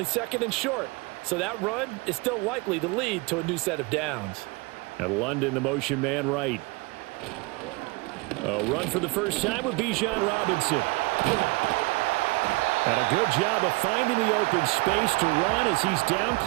second and short. So that run is still likely to lead to a new set of downs. And London, the motion man right. A run for the first time with Bijan Robinson. And a good job of finding the open space to run as he's down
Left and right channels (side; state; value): left; quieter; 25.3 dB